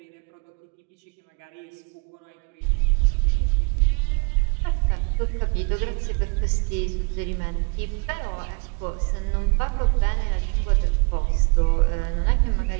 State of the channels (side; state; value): left; quieter; 36.0 dB